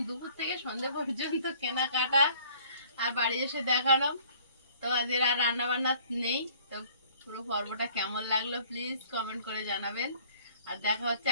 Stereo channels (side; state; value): both; inverted; correlation -0.55